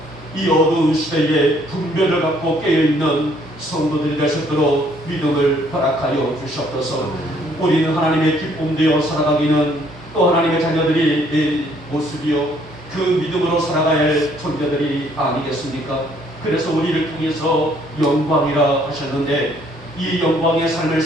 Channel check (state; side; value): normal; both; correlation 0.64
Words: 이 어두운 시대에 분별을 갖고 깨어있는 성도들이 될 수 있도록 믿음을 허락하여 주시옵소서. 우리는 하나님의 기쁨 되어 살아가기는 또 하나님의 자녀들이 내 모습이요 그 믿음으로 살아가야 할 존재들이 아니겠습니까? 그래서 우리를 통해서 영광이라 하셨는데, 이 영광의 삶을